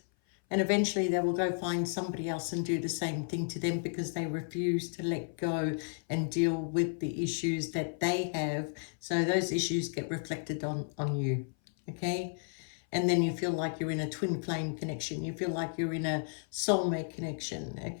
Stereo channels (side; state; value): right; silent; 56 dB below the other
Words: and eventually they will go find somebody else and do the same thing to them, because they refuse to let go and deal with the issues that they have. So those issues get reflected on you, okay? And then you feel like you're in a twin flame connection. You feel like you're in a soulmate connection,